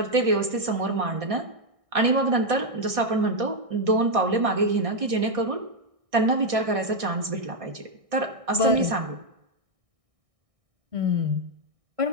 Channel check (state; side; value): late; left; 1.6 ms